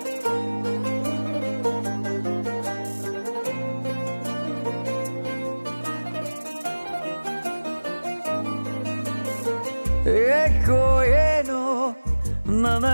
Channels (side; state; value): both; inverted; correlation -1.00